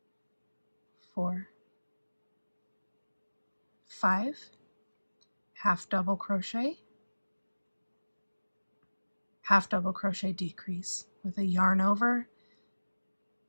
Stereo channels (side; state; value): both; inverted; correlation -1.00